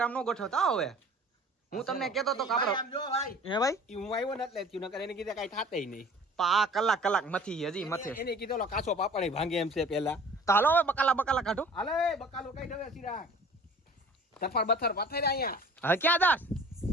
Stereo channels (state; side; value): normal; both; correlation 0.46